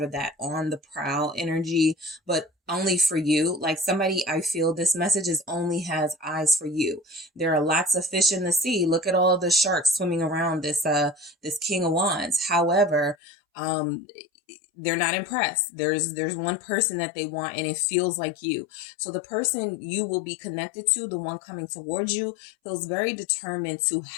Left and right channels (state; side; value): drops out; right; at 13.2 s